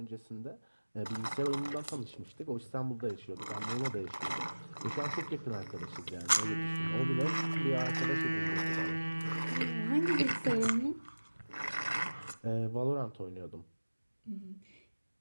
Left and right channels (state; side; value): inverted; both; correlation -1.00